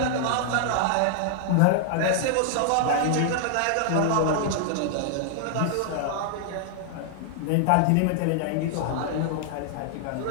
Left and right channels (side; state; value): both; different; correlation 0.00